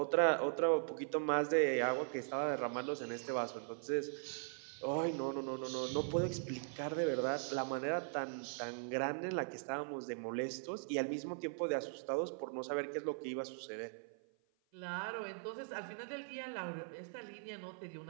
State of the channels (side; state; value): left; silent; 51 dB below the other